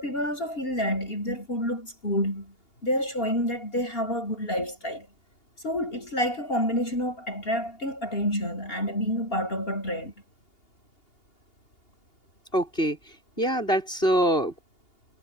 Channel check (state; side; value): late; right; 2.8 ms